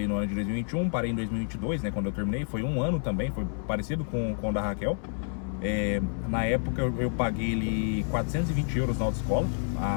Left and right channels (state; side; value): silent; right; 59 dB below the other